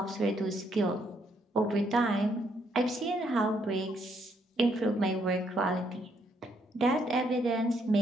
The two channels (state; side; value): normal; both; correlation 0.72